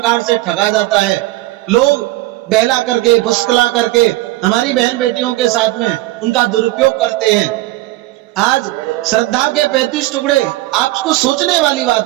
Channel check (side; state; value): left; quieter; 18.1 dB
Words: से ठगा जाता है। लोग बहला करके, फुसकला करके हमारी बहन बेटियों के साथ में उनका दुरुपयोग करते हैं। आज श्रद्धा के 35 टुकड़े, आपको सोचने वाली